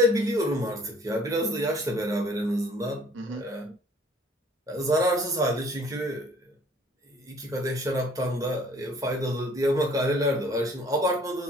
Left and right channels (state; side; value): normal; both; correlation 0.55